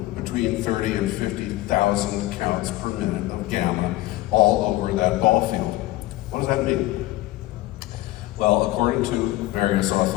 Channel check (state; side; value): quieter; right; 17.4 dB